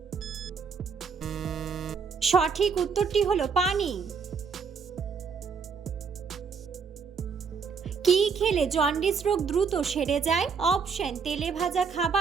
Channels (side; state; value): left; quieter; 5.7 dB